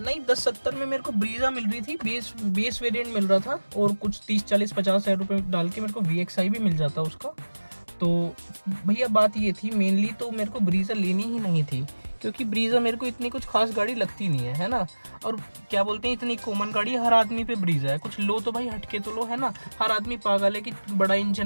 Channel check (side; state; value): both; inverted; correlation -1.00